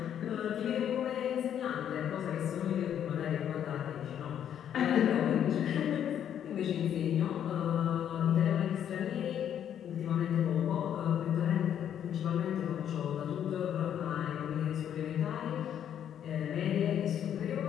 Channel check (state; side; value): quieter; right; 9.6 dB